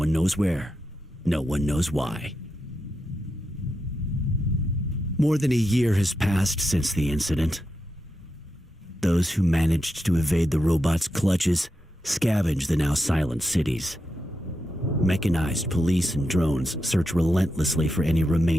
knows where. No one knows why. More than a year has passed since the incident. Those who managed to evade the robots' clutches scavenge the now silent cities. Mechanized police and drones search relentlessly for any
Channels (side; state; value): both; normal; correlation 0.87